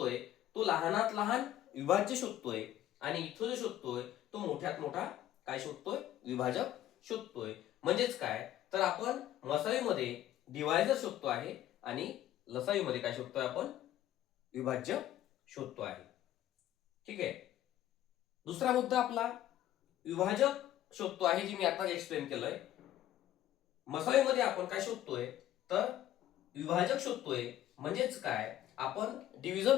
तो लहानात लहान विभाज्य शोधतोय, आणि इथं जो शोधतोय तो मोठ्यात मोठा काय शोधतोय, विभाजक शोधतोय. म्हणजेच काय, तर आपण मसावीमध्ये डिवायझर शोधतो आहे आणि लसावीमध्ये काय शोधतोय, आपण विभाज्य शोधतो आहे. ठीक आहे. दुसरा मुद्दा आपला विभाजक शोधतो आहे, जी मी आता एक्सप्लेन केलंय. मसावीमध्ये आपण काय शोधतोय, तर विभाजक शोधतोय. म्हणजेच काय, आपण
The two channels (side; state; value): right; quieter; 12.9 dB